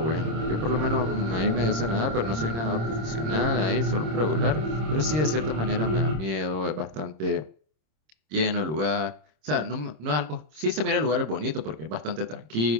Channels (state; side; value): late; left; 26 ms